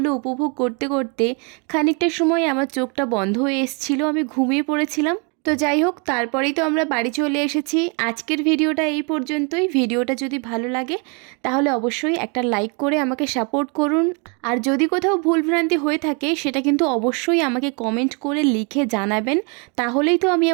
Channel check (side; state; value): left; quieter; 34.6 dB